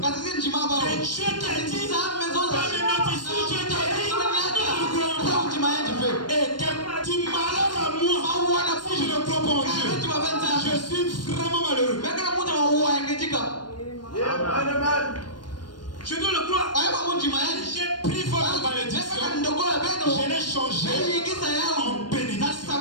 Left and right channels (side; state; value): right; late; 0.71 ms